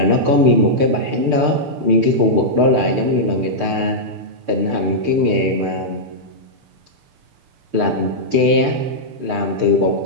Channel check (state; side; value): late; left; 6.8 ms